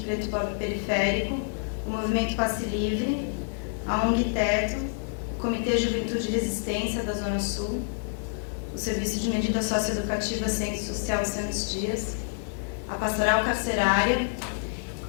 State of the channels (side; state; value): right; silent; 57 dB below the other